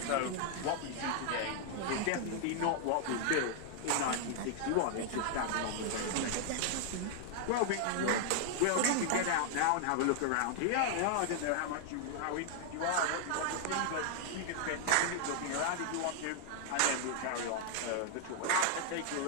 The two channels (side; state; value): both; different; correlation 0.00